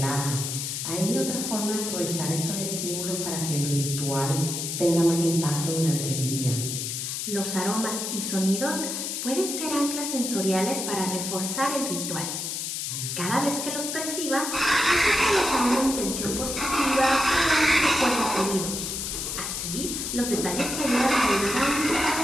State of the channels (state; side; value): noise; left; hiss, 3 dB below the sound